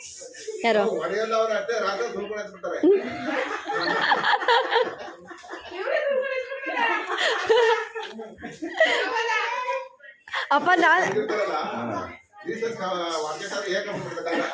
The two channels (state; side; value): identical; both; correlation 1.00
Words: ಯಾರು ಹೊಡೆಯಲ್ಲ ಅವ್ರ ಅಷ್ಟೇ ರಾತ್ರಿ ಸುಳ್ಕೊಂಡು ಬಿಡ್ತಾರೆ. ಅಪ್ಪ ನಾನು